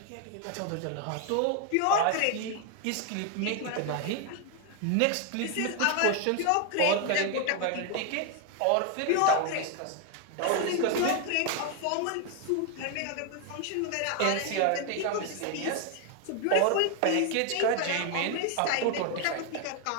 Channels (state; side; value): different; both; correlation 0.00